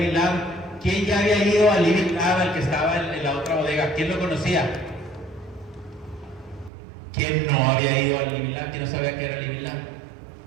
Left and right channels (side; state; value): left; drops out; at 6.7 s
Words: Lab. ¿Quién ya había ido al Living Lab, al que estaba en la otra bodega? ¿Quién lo conocía? ¿Quién no había ido al Living Lab? ¿Quién no sabía que era el Living Lab?